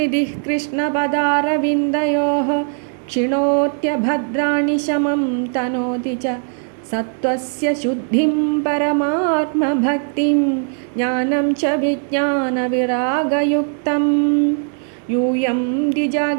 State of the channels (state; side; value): silent; left; 55 dB below the other